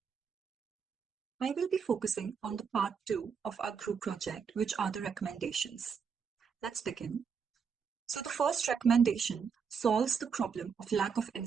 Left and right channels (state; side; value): quieter; left; 6.3 dB